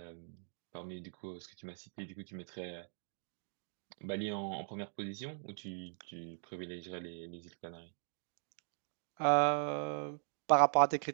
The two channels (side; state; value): left; silent; digital silence